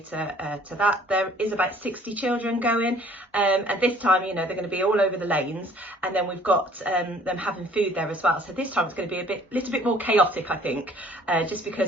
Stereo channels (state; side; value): normal; both; correlation 0.56